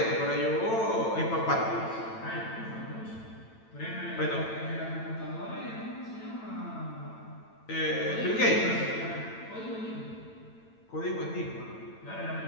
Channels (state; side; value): late; right; 9.0 ms